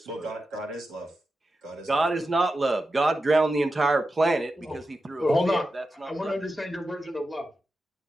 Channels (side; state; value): both; normal; correlation 0.90